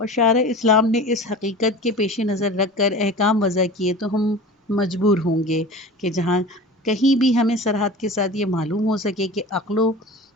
شارع اسلام نے اس حقیقت کے پیش نظر رکھ کر احکام وضع کیے، تو ہم مجبور ہوں گے کہ جہاں کہیں بھی ہمیں سرحد کے ساتھ یہ معلوم ہو سکے کہ عقل و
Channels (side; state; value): both; normal; correlation 0.35